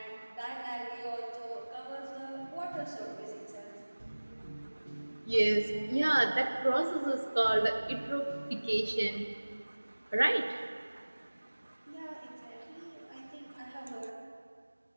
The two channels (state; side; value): inverted; both; correlation -1.00